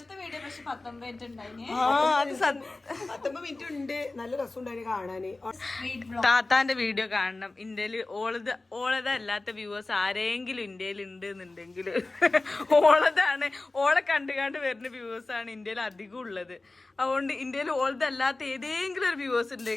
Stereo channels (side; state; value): right; quieter; 3.2 dB